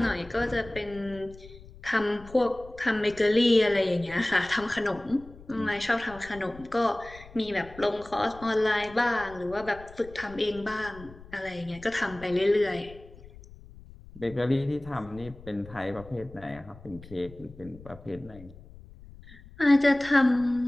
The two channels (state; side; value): noise; left; rumble, 19 dB below the sound